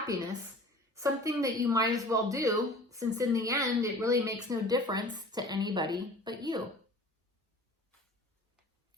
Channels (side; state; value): both; normal; correlation 0.44